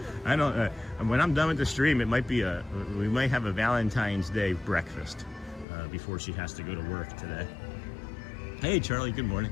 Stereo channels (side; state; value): right; drops out; at 5.7 s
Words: I don't, when I'm done with the stream, it might be we might have a Valentine's Day breakfast before she has to go to work today. Hey Charlie, good morning.